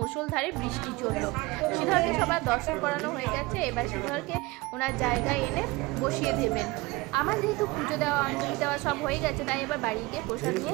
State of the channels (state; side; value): quieter; left; 22.3 dB